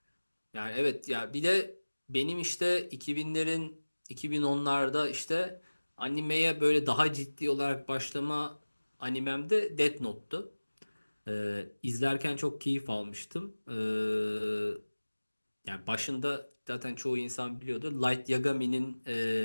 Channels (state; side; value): inverted; both; correlation -1.00